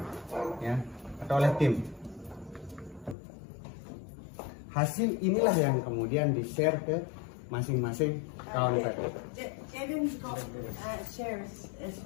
ya, atau oleh tim. Hasil inilah yang kemudian di-share ke masing-masing kawan tadi. Devin got shares as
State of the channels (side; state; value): right; drops out; at 3.2 s